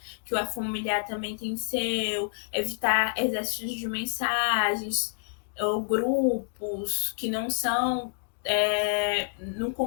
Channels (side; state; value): right; silent; digital silence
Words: que o familiar também tem seu, evitar exércitos de mensagens ou grupos que não são no